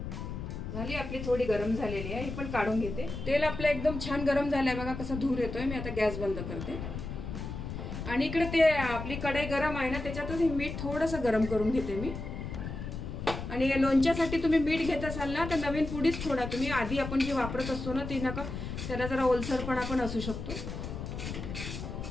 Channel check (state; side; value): noise; left; rumble, 7 dB below the sound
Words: झाली आपली थोडी गरम झालेली आहे, ही पण काढून घेते। तेल आपलं एकदम छान गरम झालंय बघा, कसा धूर येतोय। मी आता गॅस बंद करते आणि इकडे ते आपली कढई गरम आहे ना, त्याच्यातच हे मीठ थोडंसं गरम करून घेते मी। आणि लोणच्यासाठी तुम्ही मीठ घेत असाल ना तर नवीन पुडीच थोडा तुम्ही, आधी आपण जे वापरत असतो ना ती नका, त्याला जरा ओलसरपणा पण असू शकतो।